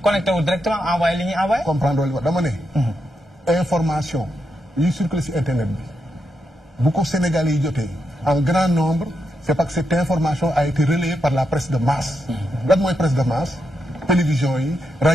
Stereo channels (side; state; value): both; normal; correlation 0.84